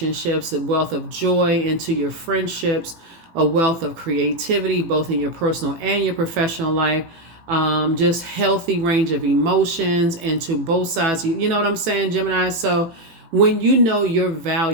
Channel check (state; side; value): late; left; 18 ms